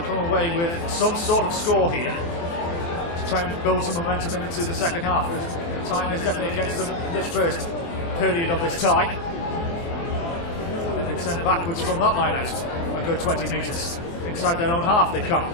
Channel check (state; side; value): late; right; 24 ms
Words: come away with some sort of score here to try and build some momentum into the second half. Time is definitely against them in this first period of this tie. They've been sent backwards from that line out a good 20 metres. Inside their own half they come.